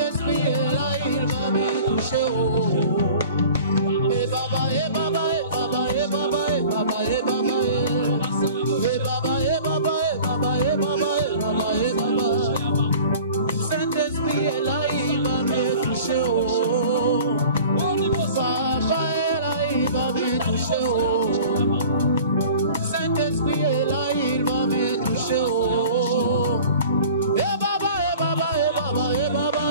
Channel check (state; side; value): inverted; both; correlation -0.44